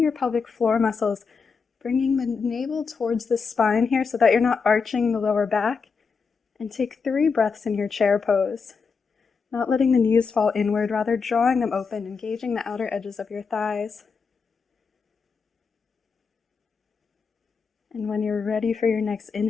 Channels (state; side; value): quieter; right; 5.3 dB